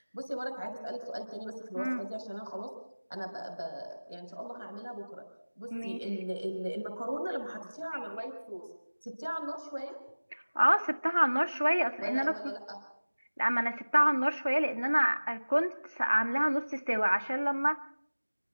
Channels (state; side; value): inverted; both; correlation -1.00